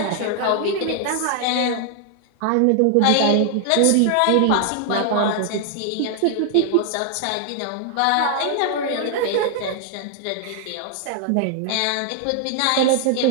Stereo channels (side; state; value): both; different; correlation 0.00